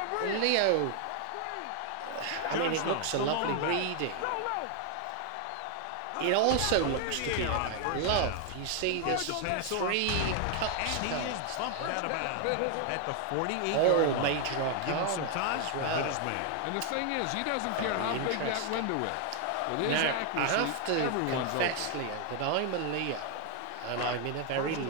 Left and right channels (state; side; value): different; both; correlation 0.00